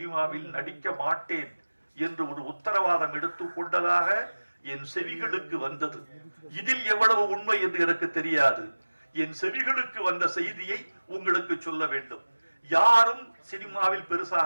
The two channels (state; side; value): inverted; both; correlation -1.00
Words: நடிக்க மாட்டேன் என்று ஒரு உத்தரவாதம் எடுத்துக் கொண்டதாக என் செவிகளுக்கு வந்தது. இதில் எவ்வளவு உண்மை என்று எனக்கு தெரியாது. என் செவிகளுக்கு வந்த செய்தியை உங்களுக்கு சொல்ல வேண்டும். யாரும் சினிமாவில்